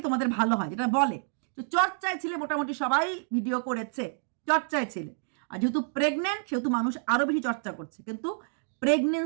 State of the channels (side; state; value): left; silent; digital silence